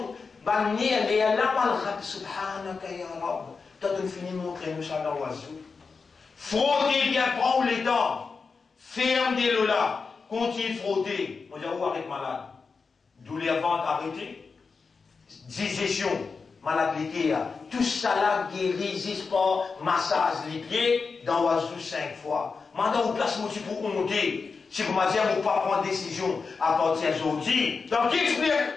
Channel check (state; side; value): quieter; right; 4.8 dB